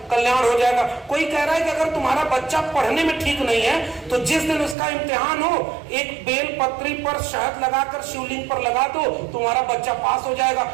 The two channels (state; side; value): drops out; left; at 4.8 s